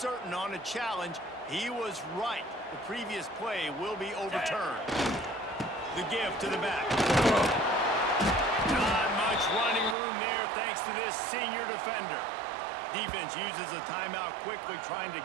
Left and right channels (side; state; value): left; drops out; at 10.0 s